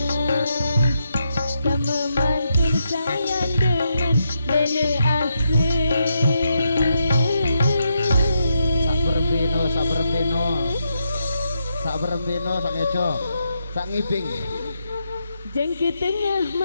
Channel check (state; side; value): inverted; both; correlation -0.82